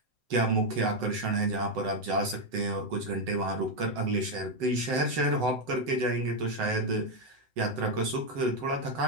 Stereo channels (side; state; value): left; late; 7.8 ms